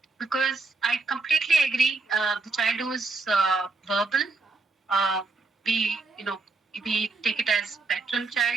Because I completely agree, the child who is verbal, uh, we we take it as spectrum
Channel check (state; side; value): quieter; left; 3.7 dB